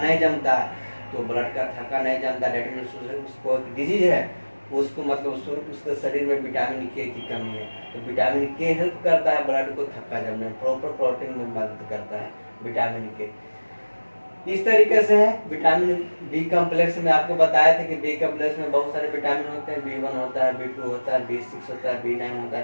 जमता है, तो ब्लड का थक्का नहीं जमता, डेट मीन्स उसको डिजीज है, उसको मतलब उसके शरीर में विटामिन के की कमी है, तो विटामिन के हेल्प करता है ब्लड को थक्का जमने में, प्रॉपर क्लॉटिंग में मदद करता है विटामिन के। इस तरीके से है। विटामिन बी कम्प्लेक्स में आपको बताया था कि बी कम्प्लेक्स में बहुत सारे विटामिन होते हैं, B1 होता है, B2 होता है, B6 होता है, B9 होता है,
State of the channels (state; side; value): inverted; both; correlation -1.00